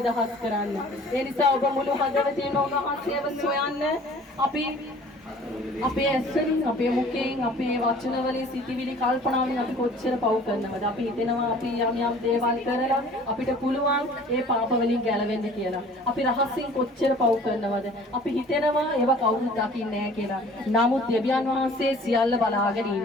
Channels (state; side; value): normal; both; correlation 0.49